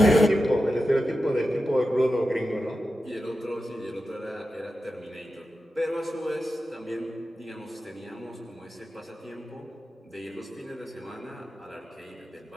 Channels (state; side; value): normal; both; correlation 0.91